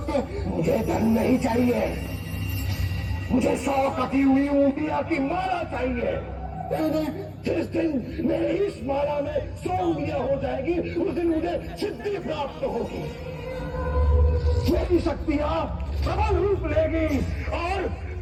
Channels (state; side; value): identical; both; correlation 1.00